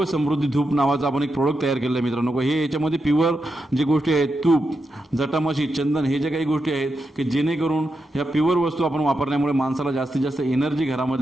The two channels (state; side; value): normal; both; correlation 0.86